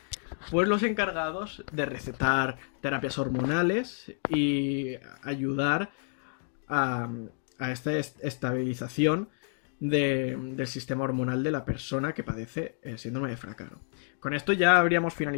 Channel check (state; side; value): silent; right; 58 dB below the other